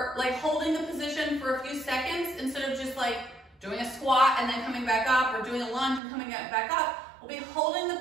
like holding the position for a few seconds instead of just like doing a squat and then coming back up, or doing a lunge and coming back up. We'll be holding the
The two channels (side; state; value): left; drops out; at 6.0 s